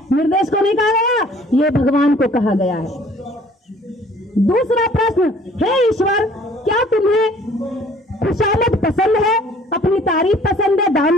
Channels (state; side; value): normal; both; correlation 0.55